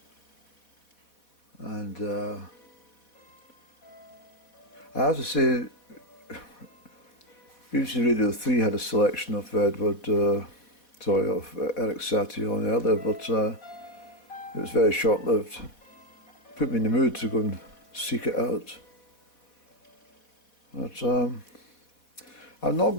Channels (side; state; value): right; late; 4.2 ms